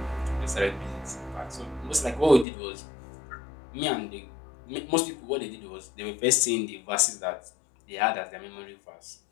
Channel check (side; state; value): right; drops out; at 2.5 s